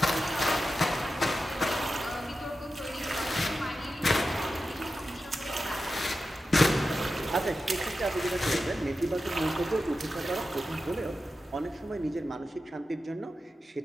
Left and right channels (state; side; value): normal; both; correlation 0.92